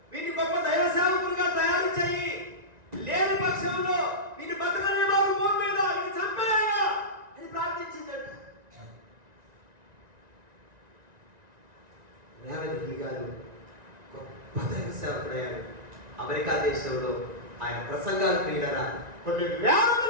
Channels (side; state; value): left; late; 1.9 ms